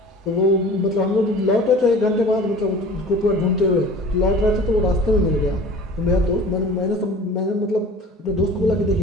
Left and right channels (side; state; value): both; normal; correlation 0.43